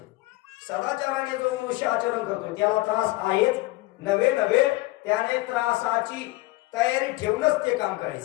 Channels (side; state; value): right; quieter; 20.4 dB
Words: सदाचाराने जो मनुष्य आचरण करतो त्याला त्रास आहेच. नवे नवे त्याने त्रासाची तयारी ठेवूनच ते काम